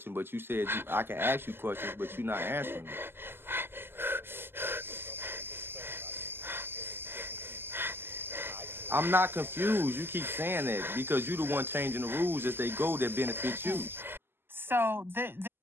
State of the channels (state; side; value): late; left; 0.11 ms